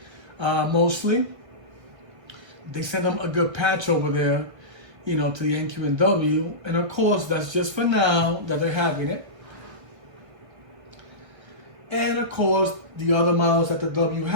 mostly. They sent them a good patch over there, you know, to the N, Q, and W. And of course, that's just for now that they're having it. And of course, the other models that the W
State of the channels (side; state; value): left; late; 1.4 ms